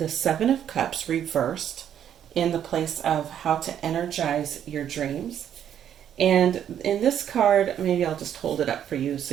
Seven of Cups reversed in the place of how to energize your dreams. And in this card, maybe I'll just hold it up for you so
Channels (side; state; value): left; quieter; 9.7 dB